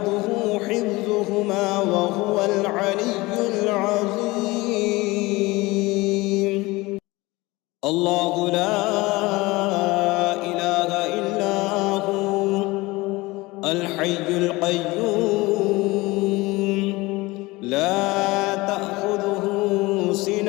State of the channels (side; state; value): right; quieter; 21.8 dB